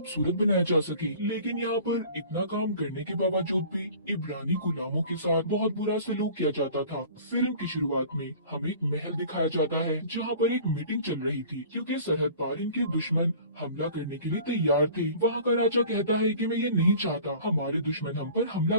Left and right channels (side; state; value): both; inverted; correlation -0.45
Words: बनाया जा सके। लेकिन यहाँ पर इतना काम करने के बावजूद भी इब्रानी गुलामों के साथ बहुत बुरा सलूक किया जाता था। फिल्म की शुरुआत में हमें एक महल दिखाया जाता है, जहाँ पर एक मीटिंग चल रही थी, क्योंकि सरहद पार इनके दुश्मन हमला करने के लिए तैयार थे। वहाँ का राजा कहता है कि मैं ये नहीं चाहता हमारे दुश्मन हम पर हमला